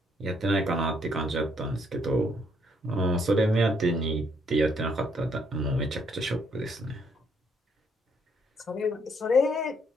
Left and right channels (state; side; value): normal; both; correlation 0.70